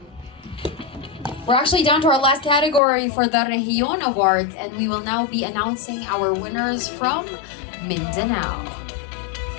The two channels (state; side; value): drops out; right; at 2.8 s